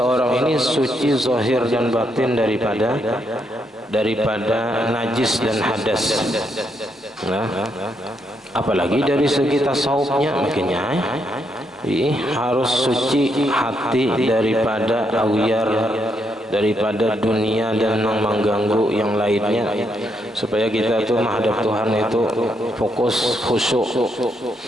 ini suci zahir dan batin daripada najis dan hadas. Nah, apalagi dari segi tasawufnya, makanya harus suci hati daripada awyar, daripada dunia dan mengganggu yang lainnya, supaya kita tuh menghadap Tuhan itu fokus, khusyuk.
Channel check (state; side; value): normal; both; correlation 0.78